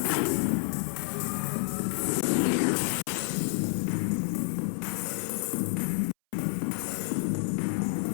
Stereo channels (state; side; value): silent; right; 58 dB below the other